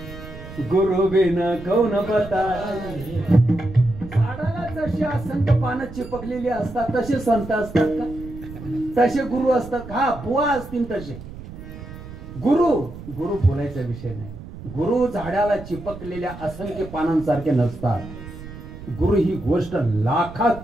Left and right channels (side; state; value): right; noise; rumble, 13 dB below the sound